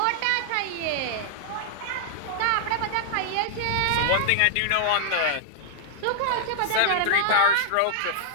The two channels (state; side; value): different; both; correlation -0.01